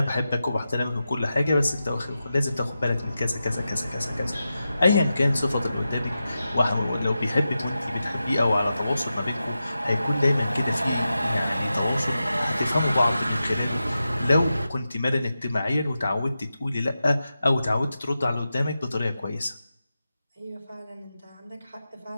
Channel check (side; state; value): both; inverted; correlation -0.91